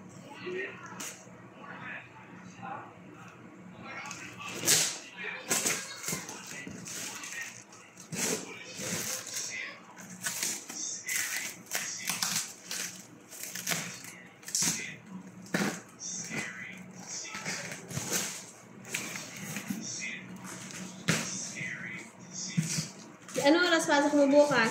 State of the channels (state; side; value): identical; both; correlation 1.00